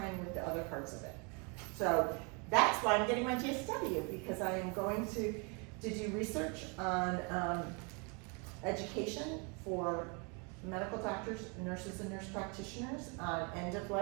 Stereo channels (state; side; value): quieter; left; 33.4 dB